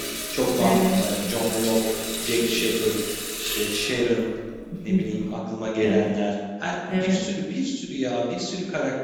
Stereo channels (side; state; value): both; identical; correlation 1.00